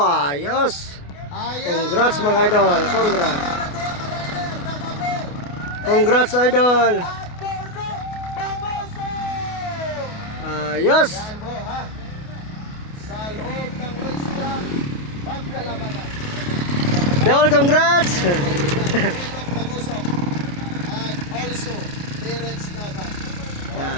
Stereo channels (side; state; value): right; late; 28 ms